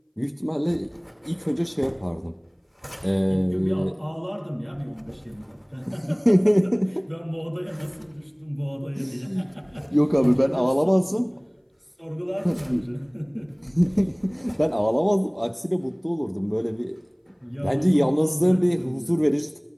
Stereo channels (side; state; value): both; identical; correlation 1.00